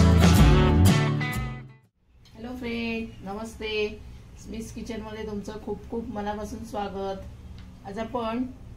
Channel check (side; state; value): both; identical; correlation 1.00